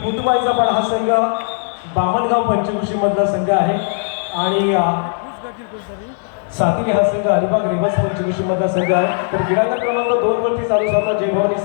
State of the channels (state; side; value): silent; right; 66 dB below the other